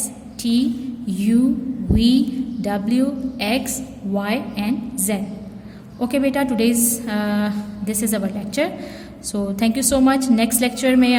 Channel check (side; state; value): both; identical; correlation 1.00